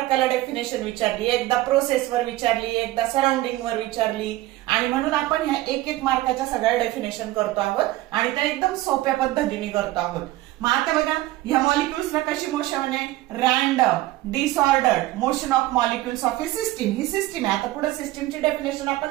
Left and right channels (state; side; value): quieter; left; 17.0 dB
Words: डेफिनेशन विचारली, एकदा प्रोसेसवर विचारली, एकदा सराउंडिंगवर विचारली, आणि म्हणून आपण ह्या 1-1 मार्काच्या सगळ्या डेफिनेशन करतो आहोत आणि त्या एकदम सोप्या पद्धतीने करतो आहोत. मग आता बघा, ह्या मॉलिक्युल्सला कशी मोशन आहे? Random disordered motion of molecules of a system. He system आहे. आता पुढे सिस्टीमची डेफिनेशन